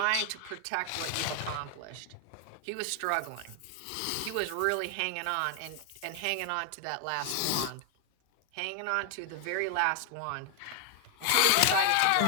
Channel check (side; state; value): both; different; correlation 0.00